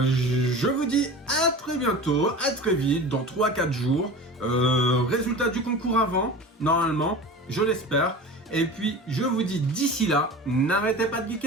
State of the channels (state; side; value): normal; both; correlation 0.35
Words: vous dis à très bientôt, à très vite, dans 3-4 jours. Résultat du concours avant, normalement, je l'espère. Et puis, je vous dis d'ici là, n'arrêtez pas de